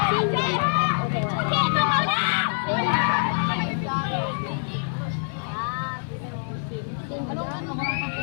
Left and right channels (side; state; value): right; silent; 62 dB below the other